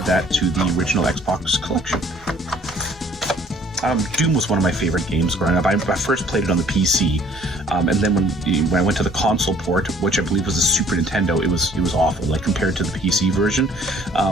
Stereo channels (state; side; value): normal; both; correlation 0.57